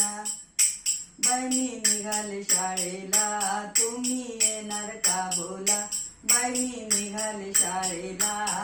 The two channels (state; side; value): identical; both; correlation 1.00